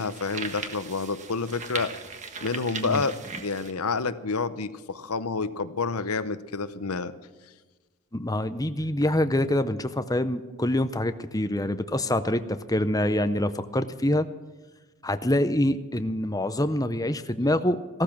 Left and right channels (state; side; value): normal; both; correlation 0.52